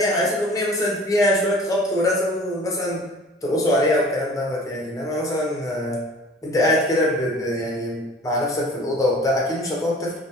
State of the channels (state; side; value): normal; both; correlation 0.46